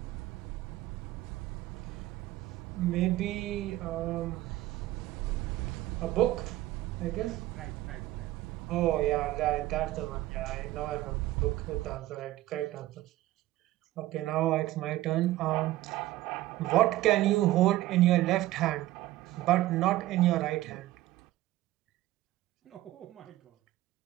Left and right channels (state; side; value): quieter; left; 16.0 dB